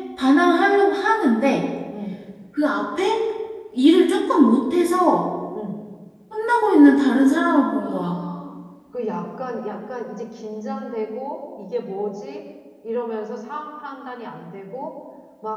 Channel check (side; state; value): both; identical; correlation 1.00